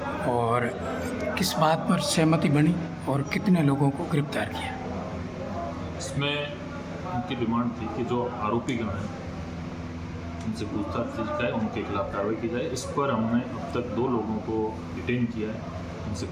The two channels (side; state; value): both; identical; correlation 1.00